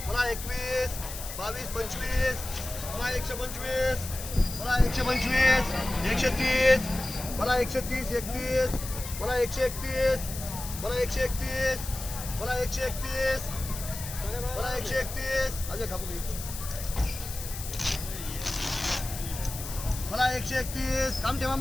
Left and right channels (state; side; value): noise; left; hiss, 9 dB below the sound